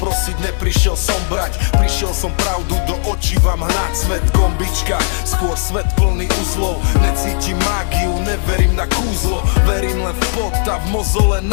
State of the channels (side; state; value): right; silent; 61 dB below the other